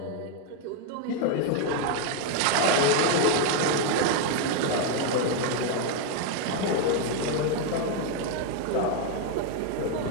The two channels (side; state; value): both; different; correlation 0.01